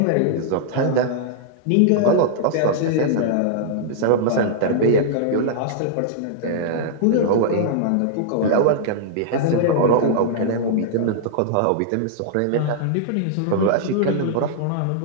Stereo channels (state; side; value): different; both; correlation -0.01